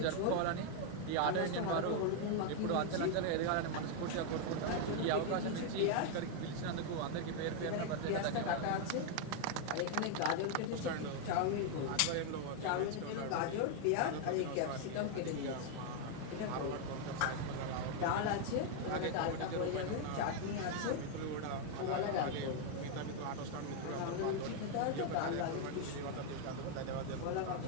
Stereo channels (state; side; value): different; both; correlation 0.00